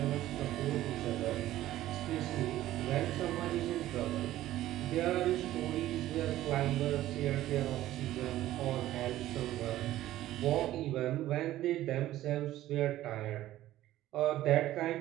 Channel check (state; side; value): quieter; left; 14.4 dB